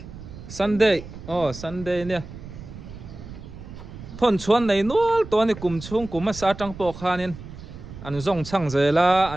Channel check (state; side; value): noise; right; rumble, 13 dB below the sound